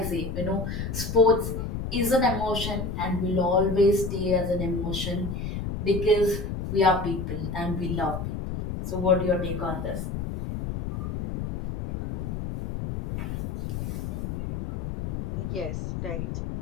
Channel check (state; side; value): noise; left; rumble, 5 dB below the sound